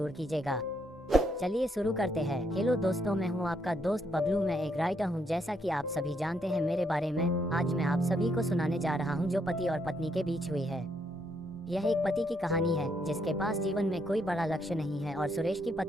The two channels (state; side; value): normal; both; correlation 0.74